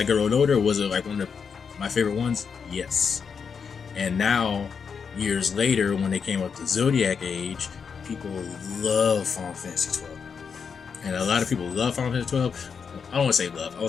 grew older, was it like one of my favorite ones? Yes. And now years later, when they came up to Zodiac Age, people love Final Fantasy 12. And a lot of people love Final Fantasy 12. I don't want to say love. I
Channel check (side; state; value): right; quieter; 6.2 dB